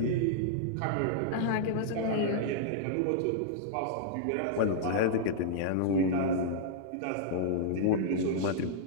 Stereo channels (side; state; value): both; different; correlation -0.02